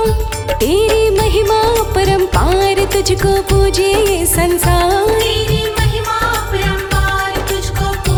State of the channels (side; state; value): both; identical; correlation 1.00